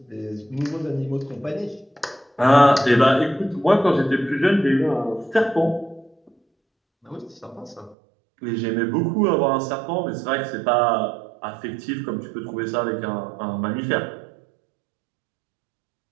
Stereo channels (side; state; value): left; drops out; at 8.0 s